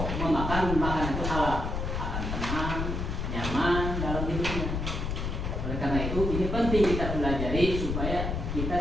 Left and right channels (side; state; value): left; noise; rumble, 2 dB below the sound